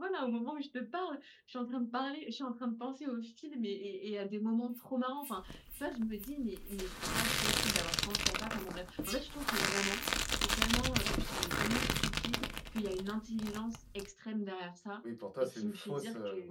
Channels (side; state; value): both; identical; correlation 1.00